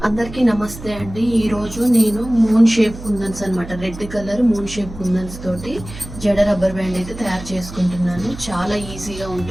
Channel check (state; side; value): noise; right; hum, 13 dB below the sound